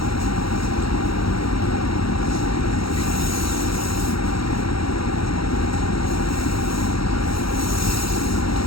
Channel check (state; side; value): late; right; 0.75 ms